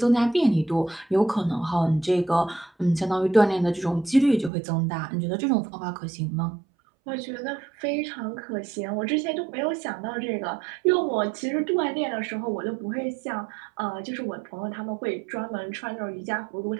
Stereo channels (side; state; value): left; drops out; at 4.5 s